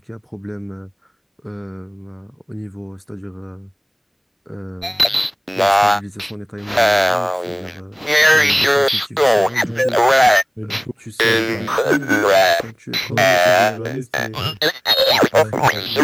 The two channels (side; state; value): both; identical; correlation 1.00